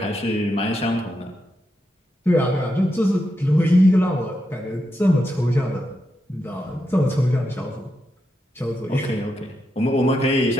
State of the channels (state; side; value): normal; both; correlation 0.85